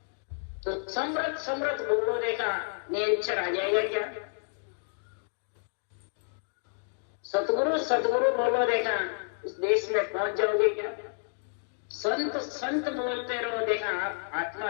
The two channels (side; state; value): right; silent; digital silence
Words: तो समृद्ध बोलो देखा नेचर आ जाएगा क्या? सतगुरु बोलो देखा उस देश में पहुंच जाओगे क्या? संत बोलते रहो देखा